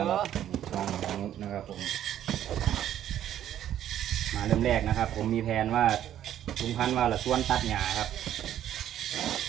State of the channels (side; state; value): left; quieter; 11.3 dB